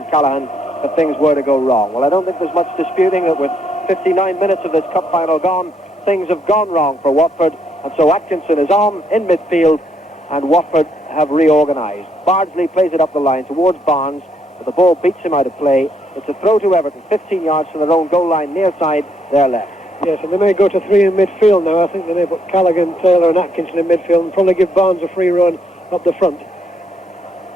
Callaghan if things were to go wrong. Well, I don't think there's much disputing that with 59 minutes of this cup final gone, things have gone wrong for Watford, and so Atkinson is on in midfield, and Watford have reorganised. Bardsley plays it up the line towards Barnes, but the ball beats him out of play. It's a throw to Everton, 15 yards from their own goal line, near side, their left. Yes, and they may go to three in midfield now. I think they may put Callaghan, Taylor and Atkinson in midfield and probably give Barnes a free run up the front.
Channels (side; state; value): both; normal; correlation 0.73